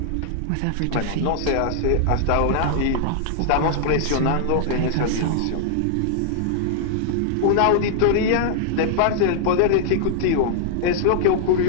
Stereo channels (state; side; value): different; both; correlation 0.00